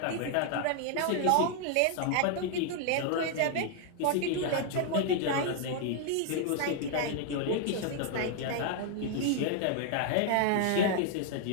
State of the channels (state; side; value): different; both; correlation 0.00